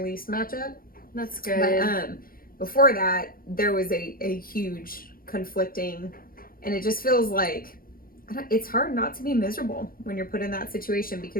match up. That's good. But before that, there was a huge conflicting, and it just feels like it's hard not to be miserable when you're put in that situation,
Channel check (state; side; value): late; right; 0.42 ms